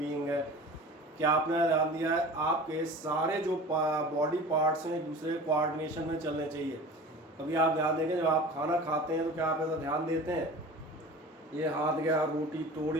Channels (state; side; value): normal; both; correlation 0.38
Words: है। क्या आपने ध्यान दिया है, आपके सारे जो बॉडी पार्ट्स हैं एक दूसरे कोऑर्डिनेशन में चलने चाहिए। कभी आप ध्यान देंगे जब आप खाना खाते हैं तो क्या आप ऐसा ध्यान देते हैं, ये हाथ गया रोटी